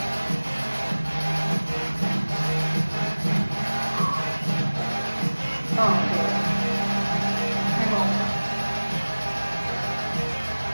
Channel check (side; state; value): both; inverted; correlation -1.00